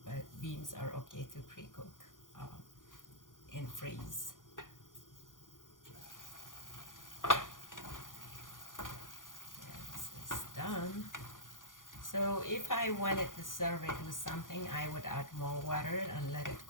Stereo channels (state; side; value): late; right; 0.89 ms